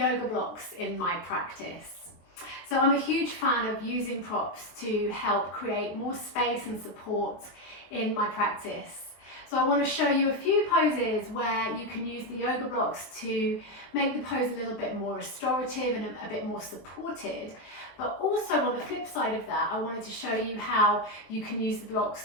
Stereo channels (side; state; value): right; late; 23 ms